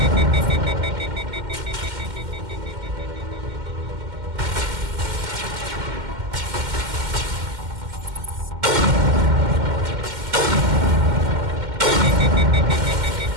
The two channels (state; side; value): late; left; 2.1 ms